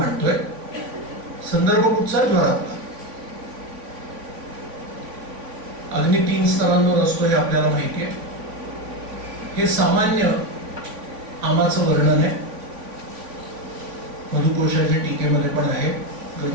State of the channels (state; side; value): late; left; 3.5 ms